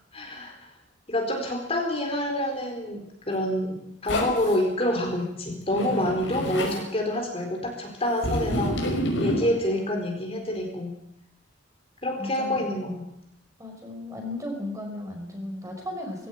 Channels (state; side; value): normal; both; correlation 0.37